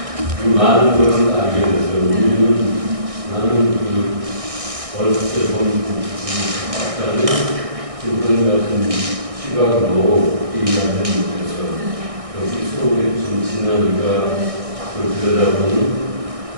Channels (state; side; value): late; left; 1.6 ms